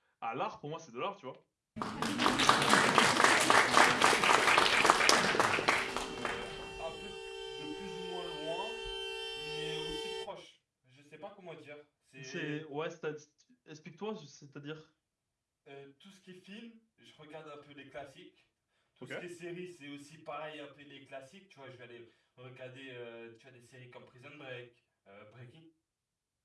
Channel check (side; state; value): both; identical; correlation 1.00